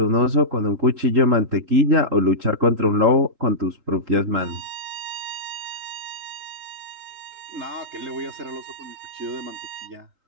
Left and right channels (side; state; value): left; late; 3.8 ms